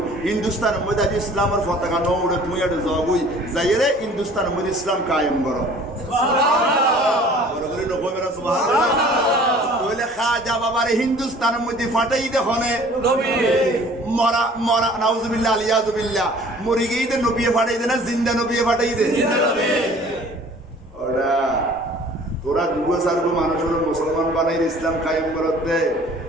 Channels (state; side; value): normal; both; correlation 0.50